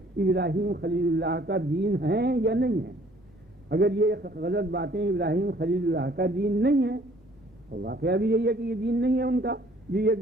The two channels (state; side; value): normal; both; correlation 0.58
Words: خلیل اللہ کا دین ہیں یا نہیں ہیں؟ اگر یہ غلط باتیں ابراہیم خلیل اللہ کا دین نہیں ہیں، اور واقعہ بھی یہی ہے کہ یہ دین نہیں ہے ان کا جو یہ